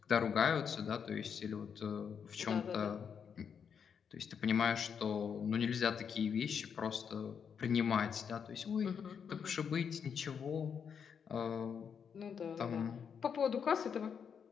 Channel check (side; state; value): right; quieter; 7.0 dB